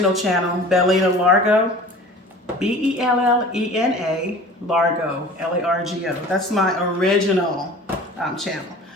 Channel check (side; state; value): both; normal; correlation 0.42